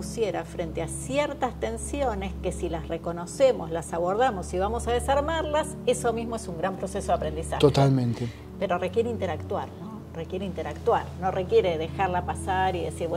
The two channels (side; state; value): both; identical; correlation 1.00